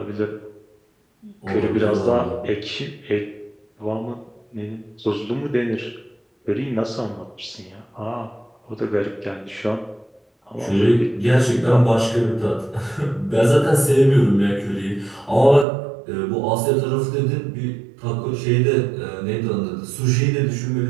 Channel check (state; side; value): drops out; left; at 15.7 s